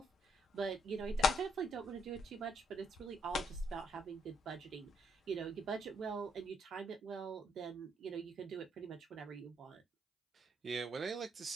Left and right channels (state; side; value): normal; both; correlation 0.72